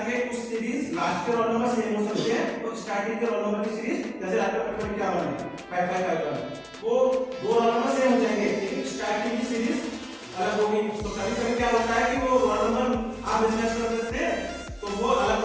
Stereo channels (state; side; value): identical; both; correlation 1.00